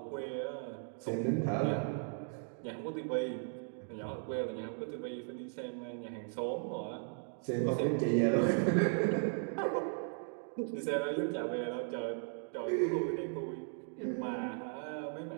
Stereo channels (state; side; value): silent; left; 53 dB below the other